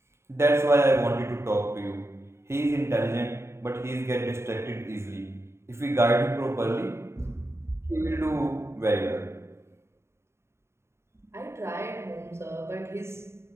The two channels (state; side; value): late; left; 0.13 ms